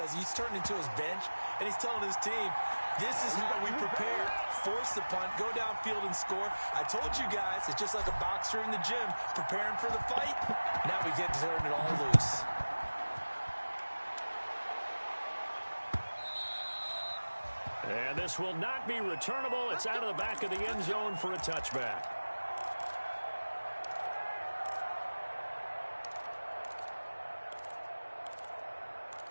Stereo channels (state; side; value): inverted; both; correlation -1.00